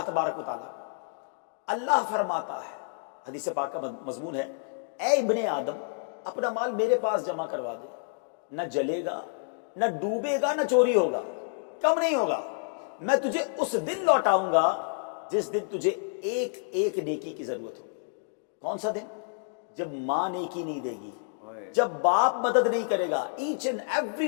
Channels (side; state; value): right; silent; digital silence